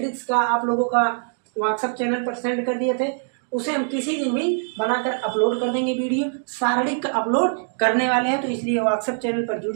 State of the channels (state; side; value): silent; left; digital silence